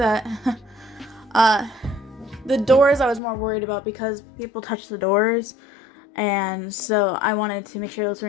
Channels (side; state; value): right; drops out; at 3.2 s